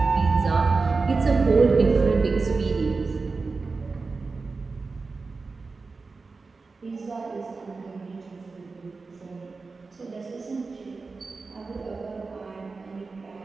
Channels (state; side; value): quieter; left; 4.1 dB